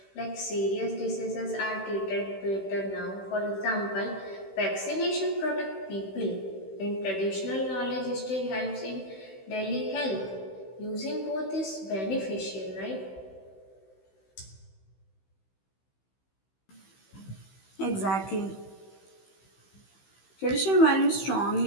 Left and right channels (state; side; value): late; right; 16 ms